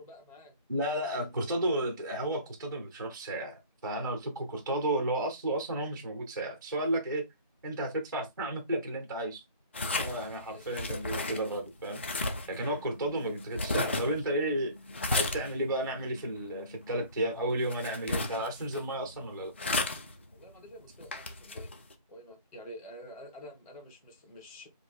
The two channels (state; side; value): inverted; both; correlation -0.43